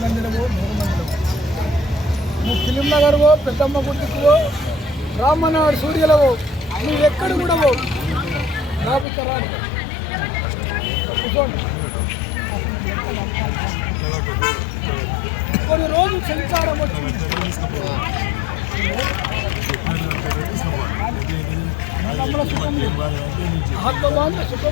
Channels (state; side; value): drops out; right; at 9.1 s